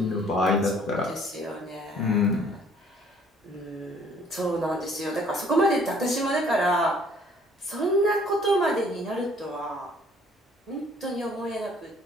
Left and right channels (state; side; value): normal; both; correlation 0.58